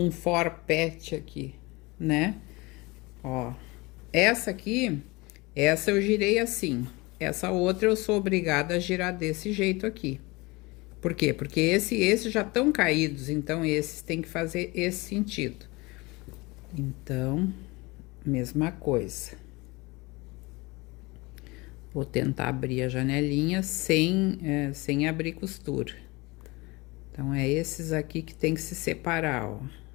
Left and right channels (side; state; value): right; quieter; 23.9 dB